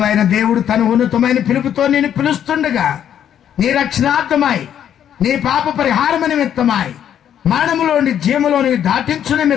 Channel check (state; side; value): quieter; right; 9.7 dB